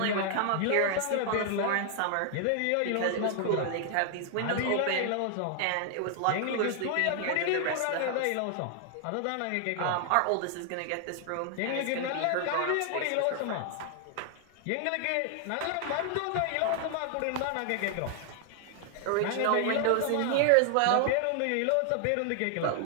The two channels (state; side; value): different; both; correlation 0.00